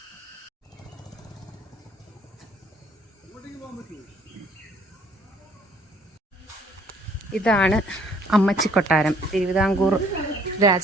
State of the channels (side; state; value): both; normal; correlation 0.60